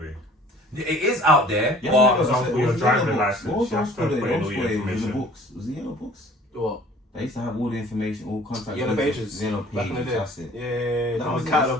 It is out there, Yeah, but for example, your driving license, What was you have to put in all your the information. books? Was it yellow books? What? They used to have all the information, all contact Yellow details. pages. Yellow Back in the pages, day. that's it. Yeah, That that was was it.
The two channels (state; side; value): normal; both; correlation 0.51